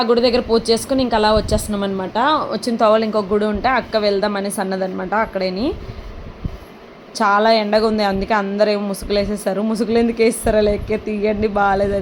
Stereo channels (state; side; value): identical; both; correlation 1.00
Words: గుడి దగ్గర పూజ చేసుకుని ఇంకా అలా వచ్చేస్తున్నాం అనమాట. వచ్చిన తోవలు ఇంకొక గుడి ఉంటే అక్క వెళ్దాం అనేసి అన్నదనమాట. అక్కడేని చాలా ఎండగా ఉంది, అందుకే అందరూ ఏమో ముసుగులు వేసేస్తారు. ముసుగులు ఎందుకు వేస్తారో లేక తీయండి